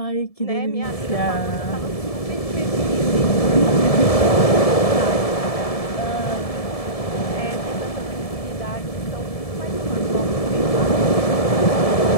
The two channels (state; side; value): late; right; 1.7 ms